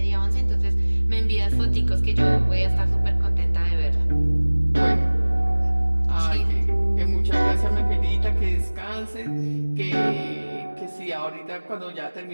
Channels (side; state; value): both; inverted; correlation -1.00